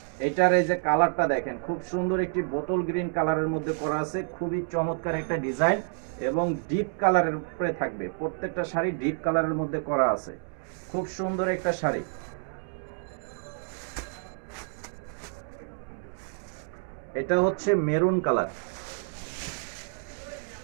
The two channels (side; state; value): left; silent; 59 dB below the other